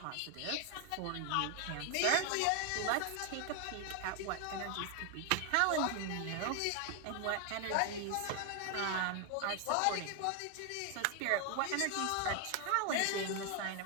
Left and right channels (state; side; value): different; both; correlation 0.00